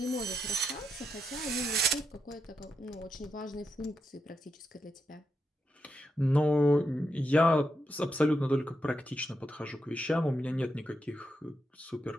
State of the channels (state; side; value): normal; both; correlation 0.84